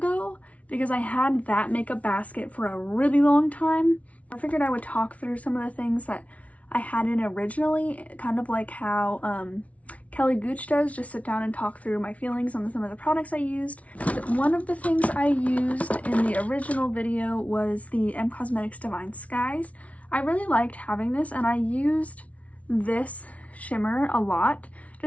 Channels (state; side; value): late; right; 0.066 ms